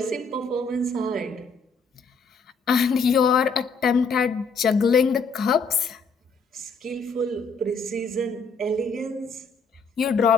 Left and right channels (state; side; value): quieter; right; 4.2 dB